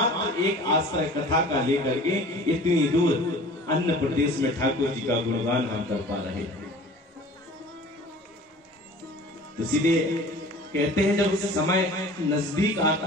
एक आश्रय कथा का लेकर के इतनी दूर अन्य प्रदेश में ठाकुर जी का गुणगान हम कर पा रहे हैं। तो सीधे कहते हैं जब समय नजदीक आता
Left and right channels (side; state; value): both; normal; correlation 0.44